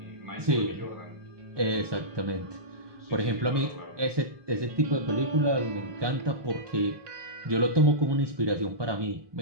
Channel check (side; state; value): left; late; 1.2 ms